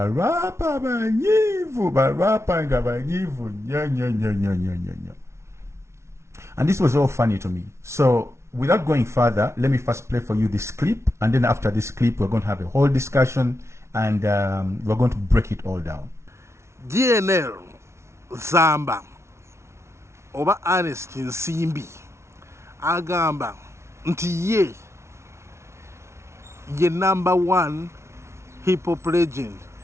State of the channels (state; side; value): late; left; 0.13 ms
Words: rapa banyivu, rapa ngaba nyivu, nya. And this was all funny to me. So without going further, let me first play for you this clip, and then after this clip, we're going to have a whole discussion, and we're going to break it all down. Gnl Zamba oba Ernest Nsimbi agamba nti ye #1 hip-hop legend